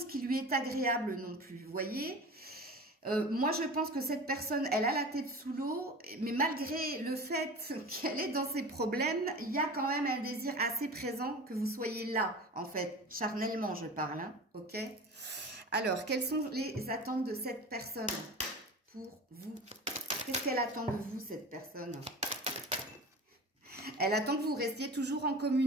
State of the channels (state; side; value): normal; both; correlation 0.34